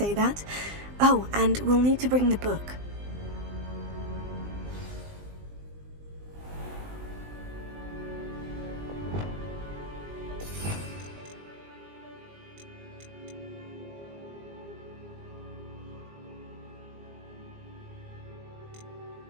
that. Oh, and we'll need to bring the book.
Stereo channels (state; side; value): late; left; 20 ms